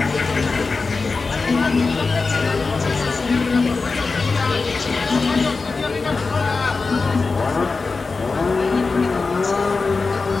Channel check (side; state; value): right; quieter; 4.2 dB